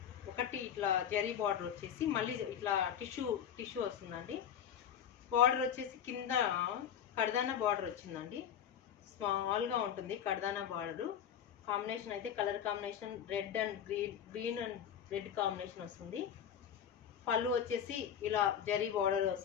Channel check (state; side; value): quieter; right; 8.9 dB